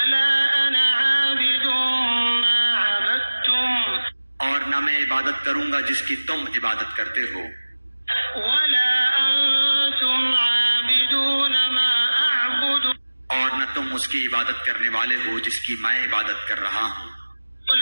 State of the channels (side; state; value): both; inverted; correlation -1.00